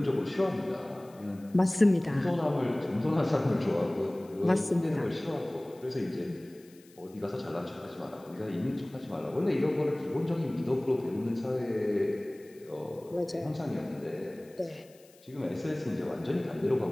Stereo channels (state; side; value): noise; left; hiss, 27 dB below the sound